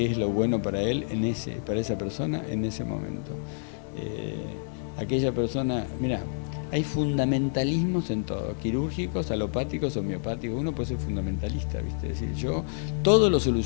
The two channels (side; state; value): right; silent; digital silence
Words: es lo bueno para él, para esa persona en ese momento. Aquella persona, mira, hay fundamentalismos en todo, quirúrgicos, alopáticos, homeopáticos. Uno puede ser fundamentalista, ¿viste? Es decir, yo todo lo